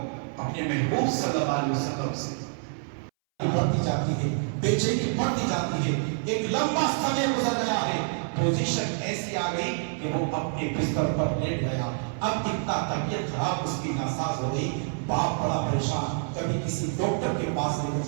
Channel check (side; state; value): left; silent; 60 dB below the other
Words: اپنے محبوب صلی اللہ علیہ وسلم سے. بڑھتی جاتی ہے، بے چینی بڑھتی جاتی ہے. ایک لمبا سمے گزر گیا ہے، پوزیشن ایسی آ گئی کہ وہ اپنے بستر پر لیٹ گیا. اب اتنا طبیعت خراب اس کی ناساز ہو گئی. باپ بڑا پریشان، کبھی کسی ڈاکٹر کے پاس لے کر